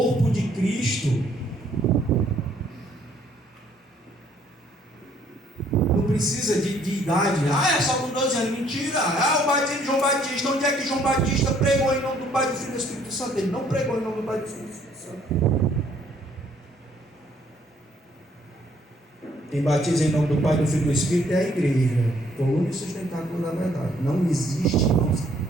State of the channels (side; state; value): both; normal; correlation 0.64